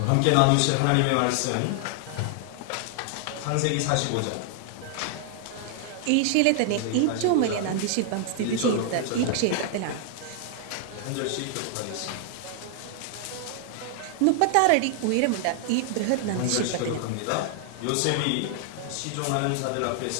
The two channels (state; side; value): different; both; correlation 0.00